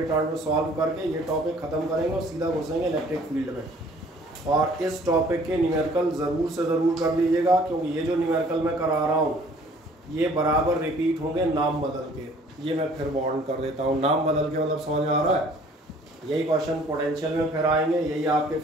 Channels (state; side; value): normal; both; correlation 0.55